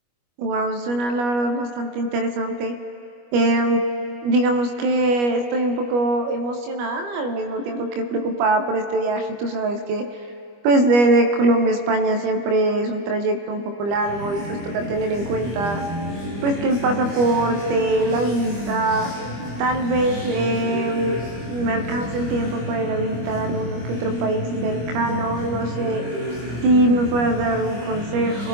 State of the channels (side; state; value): left; late; 25 ms